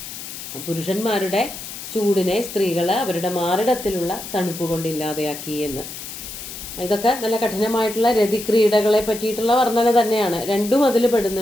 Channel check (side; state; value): left; noise; hiss, 10 dB below the sound